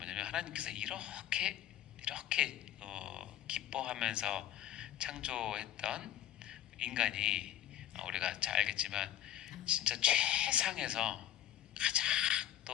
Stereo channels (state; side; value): quieter; right; 11.8 dB